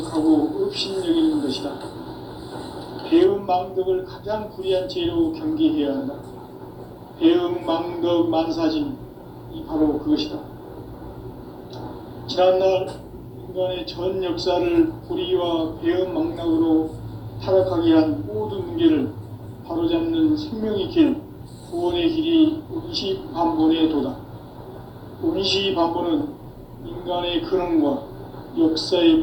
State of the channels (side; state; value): both; identical; correlation 1.00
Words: 업신여기는 것이다. 배음 망덕을 가장 불의한 죄로 경계해야 한다. 배음 망덕 만사진이 바로 그것이다. 지난날 인간의 전 역사를 불의와 배음 망락으로 타락하게 한 모든 문제를 바로잡는 생명의 길, 구원의 길이 운시반본의 도다. 운시반본은 인간의 근원과